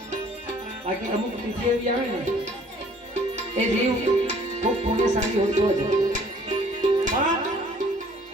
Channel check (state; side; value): normal; both; correlation 0.57